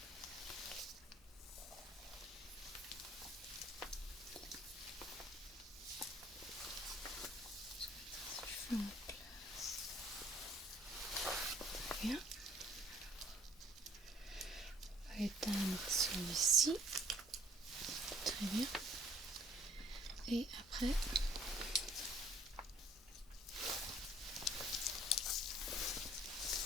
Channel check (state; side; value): normal; both; correlation 0.57